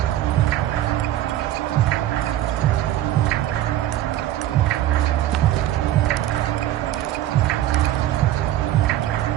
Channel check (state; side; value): quieter; left; 13.4 dB